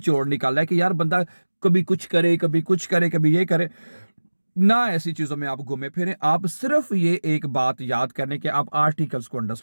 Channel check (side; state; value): both; inverted; correlation -1.00